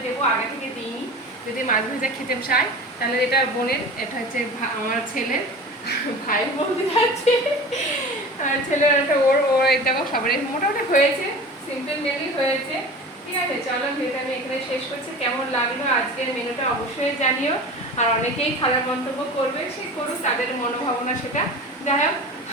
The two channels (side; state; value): both; normal; correlation 0.36